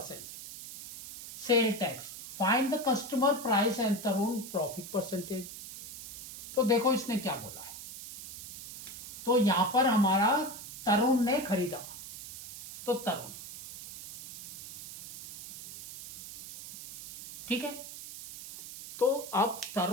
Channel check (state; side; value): noise; right; hiss, 11 dB below the sound